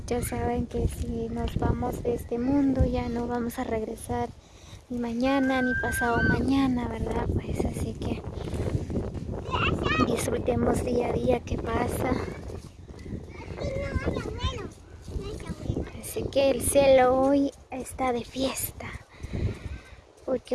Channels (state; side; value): identical; both; correlation 1.00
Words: ya saben que si nos vamos de este mundo ya no vamos a regresar ni mañana ni pasado mañana, ¿verdad? Pues así que disfrutemos día a día que pasa. Así que el cielo hoy está de fiesta,